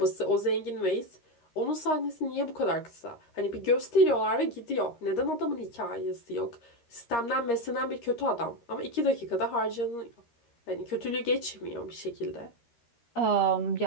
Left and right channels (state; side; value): late; right; 13 ms